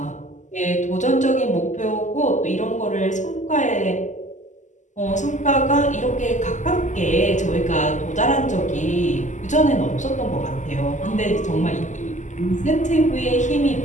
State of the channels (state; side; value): late; right; 0.35 ms